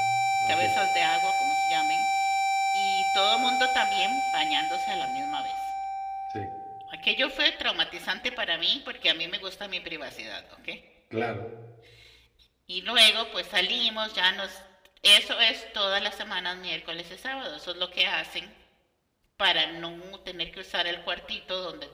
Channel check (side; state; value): both; identical; correlation 1.00